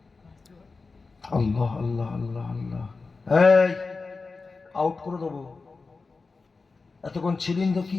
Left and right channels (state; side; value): quieter; right; 4.1 dB